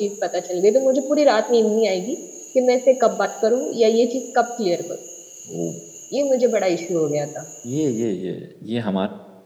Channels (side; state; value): both; identical; correlation 1.00